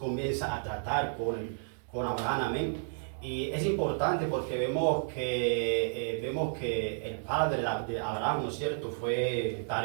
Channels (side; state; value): left; silent; digital silence